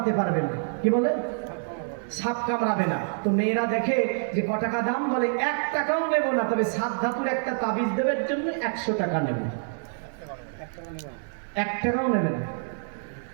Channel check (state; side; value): silent; left; digital silence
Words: পারবে না। কি বলে? সাপ কামড়াবে না। তো মেয়েরা দেখে যে ক টাকা দাম, বলে 1 টাকাও নেব না, তবে 7 ধাতুর একটা তাবিজ দেবের জন্য 100 টাকা নেব। 1 টাকাও নেবে না।